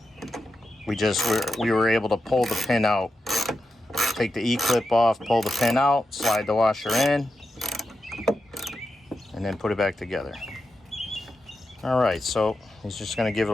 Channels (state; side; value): normal; both; correlation 0.89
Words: We were able to pull the pin out, take the E-clip off, pull the pin out, slide the washer in, and then put it back together. All right, so he's just gonna give it